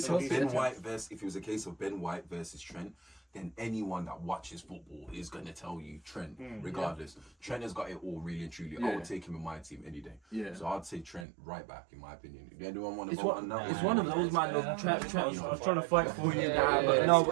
of Ben White versus Trent, then anyone that watches football is going to tell you Trent, regardless. Trent has got it all, really and truly. I would take him in my team any day. Yeah. So I'd say Trent right back, in my opinion. If anyone want to It's vote one, on that it's one? one of those, man. Look, Trent. I was trying to fight for you. But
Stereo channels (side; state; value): left; drops out; at 11.2 s